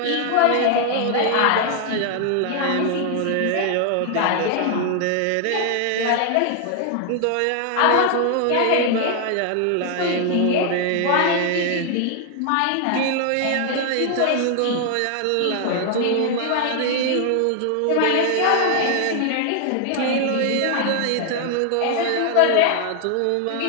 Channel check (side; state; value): both; different; correlation 0.00